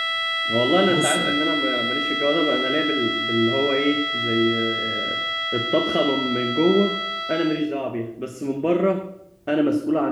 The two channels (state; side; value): identical; both; correlation 1.00